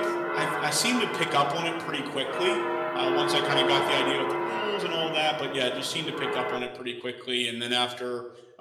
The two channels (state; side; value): identical; both; correlation 1.00